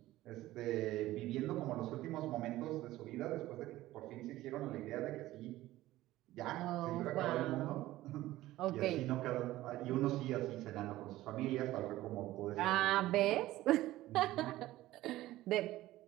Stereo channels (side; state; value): left; quieter; 16.1 dB